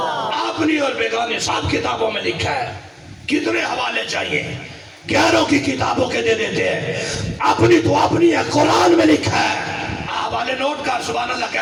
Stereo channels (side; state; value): both; identical; correlation 1.00